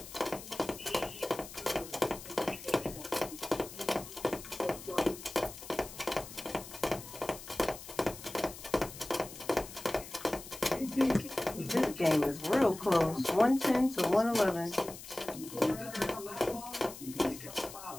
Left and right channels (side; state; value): left; noise; hiss, 14 dB below the sound